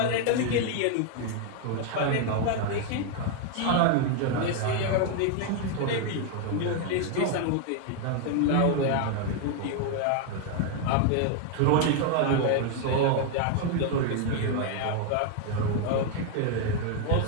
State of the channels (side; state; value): both; different; correlation 0.01